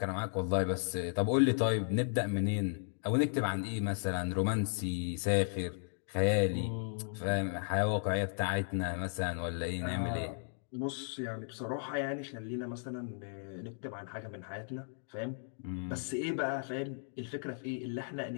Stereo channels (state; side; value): silent; right; digital silence